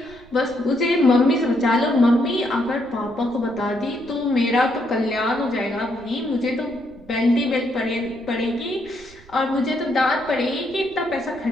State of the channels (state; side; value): noise; right; rumble, 24 dB below the sound